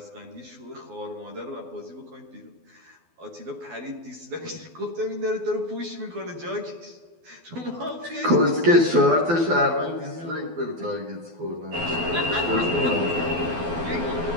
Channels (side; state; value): left; late; 12 ms